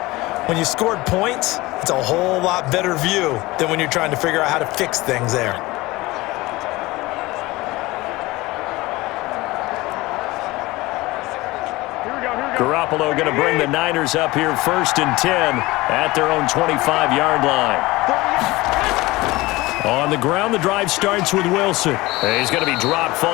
When you scored points, it's a whole lot better view than when you're trying to figure out how to fix things there. Garoppolo going to bring the Niners up here 1st and 10 at their own 25-yard line. On the ground, the drive starts with Wilson. He's going to be dropped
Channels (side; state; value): right; quieter; 20.5 dB